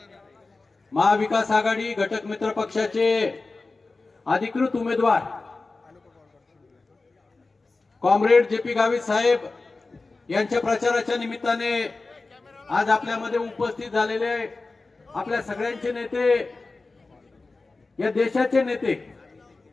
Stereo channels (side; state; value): right; quieter; 3.6 dB